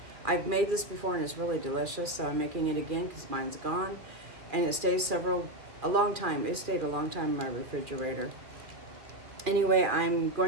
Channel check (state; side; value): late; left; 2.3 ms